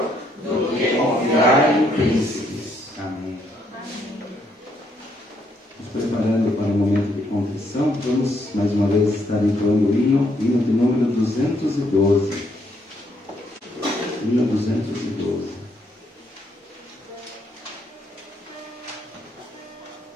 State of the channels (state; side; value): normal; both; correlation 0.72